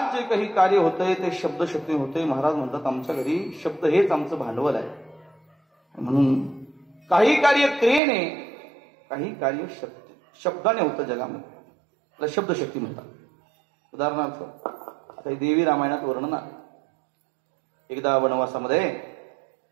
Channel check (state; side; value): drops out; left; at 8.0 s